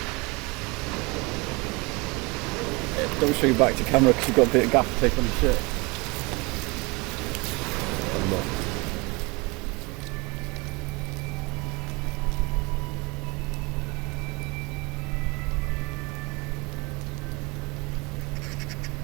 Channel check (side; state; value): left; quieter; 26.9 dB